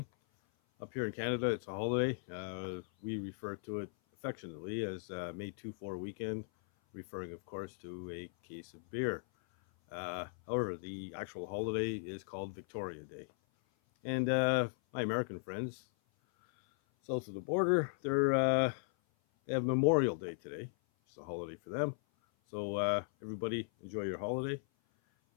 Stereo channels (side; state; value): right; silent; 53 dB below the other